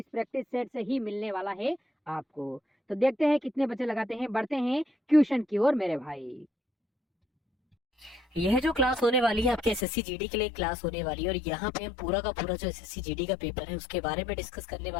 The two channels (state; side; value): drops out; right; at 9.9 s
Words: प्रैक्टिस सेट से ही मिलने वाला है आपको। तो देखते हैं कितने बच्चे लगाते हैं, बढ़ते हैं ट्यूशन की ओर मेरे भाई। यह जो क्लास होने वाली है आपके एसएससी जीडी के लिए क्लास होने वाली है, और यहाँ पे हम पूरा का पूरा जो एसएससी जीडी का पेपर है उसके बारे में डिस्कस करने